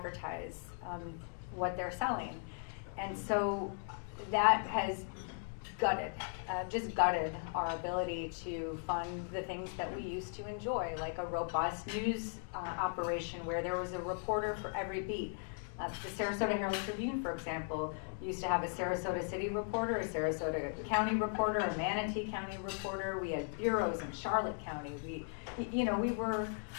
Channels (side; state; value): right; silent; 53 dB below the other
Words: what they're selling. And so that has gutted our ability to fund the things that we used to enjoy, like a robust news operation where there was a reporter for every beat. The Sarasota Herald Tribune, for example, used to have a Sarasota City reporter, a Sarasota County reporter, a Manatee County reporter. We had bureaus in Charlotte County.